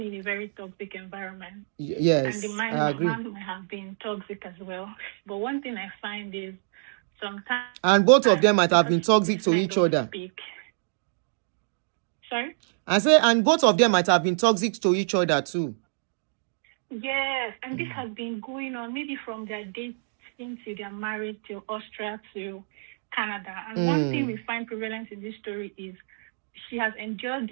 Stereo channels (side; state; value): left; silent; digital silence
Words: in a very toxic environment. Yes, And the man I agree. might have been toxic as well. But one thing I find is sometimes... And both of them might have been toxic to men each don't other. speak. Sorry? I say, and both of them might have been toxic to each other too. Yes, and this has been going on maybe from their dating to their marriage to Austria to Canada. And one thing we find prevalent in this story is she has endured